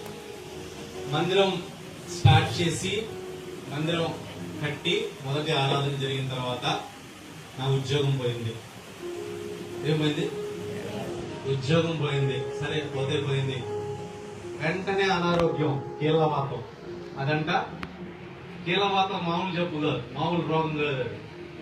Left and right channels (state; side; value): identical; both; correlation 1.00